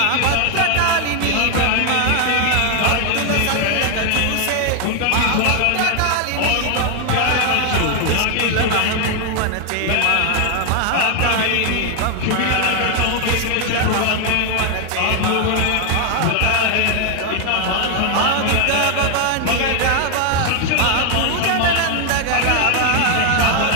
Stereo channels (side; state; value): both; different; correlation 0.00